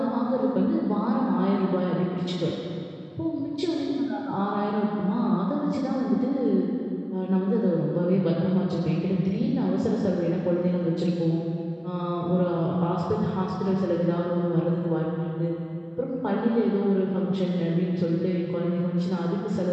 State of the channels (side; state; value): both; identical; correlation 1.00